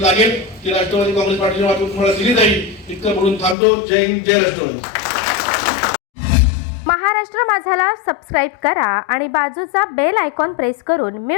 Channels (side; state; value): right; drops out; at 3.6 s